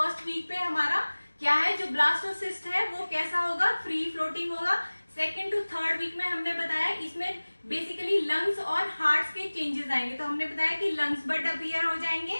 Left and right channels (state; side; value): inverted; both; correlation -1.00